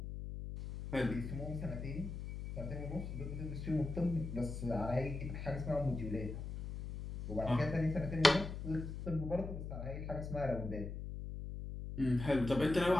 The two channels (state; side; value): noise; left; hum, 7 dB below the sound